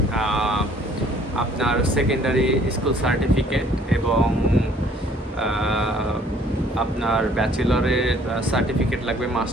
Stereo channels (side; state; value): both; normal; correlation 0.58